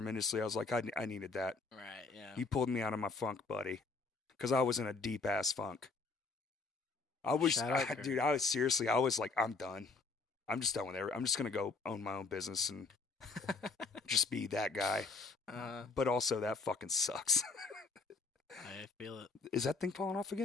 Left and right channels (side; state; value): right; quieter; 4.1 dB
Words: I was like, I needed that. Right, yeah. He pulled me out of my funk, buddy, because I was in a deep ass funk. I was, dude, I was like, I'm done. I'm just done with it. I'm just going to go own my own business and just be that guy. But also, that fucking sucks. I feel it. Is that thing falling off